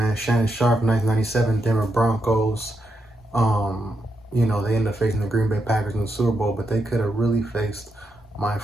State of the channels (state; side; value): normal; both; correlation 0.83